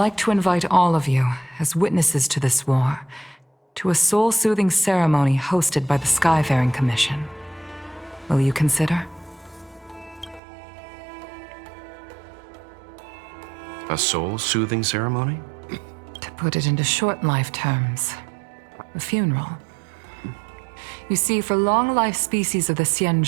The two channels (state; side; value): drops out; left; at 10.4 s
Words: to invite all of you, as witnesses to this war, to a soul-soothing ceremony hosted by the Skyfaring Commission. Will you consider? A soul-soothing ceremony? To put it into short life terms, a funeral. You see, for long-life species of the